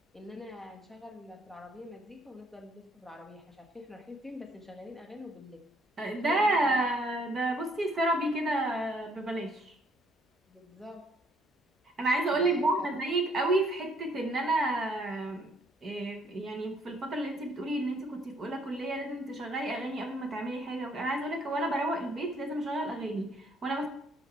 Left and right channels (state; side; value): normal; both; correlation 0.65